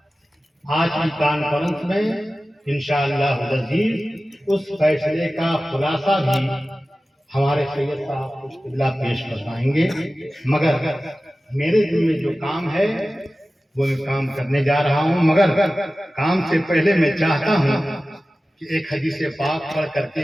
کی کانفرنس میں انشاءاللہ العزیز اس فیصلے کا خلاصہ بھی ہمارے سید صاحب کچھ قبلہ پیش کروائیں گے، مگر میرے دل میں جو کام ہے وہ میں کام کرنے جا رہا ہوں، مگر کام سے پہلے میں چاہتا ہوں کہ ایک حدیث پاک پڑھ کر کے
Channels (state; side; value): normal; both; correlation 0.96